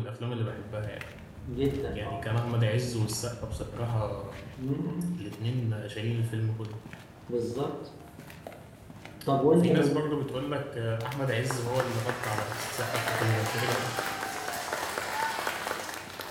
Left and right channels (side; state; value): both; identical; correlation 1.00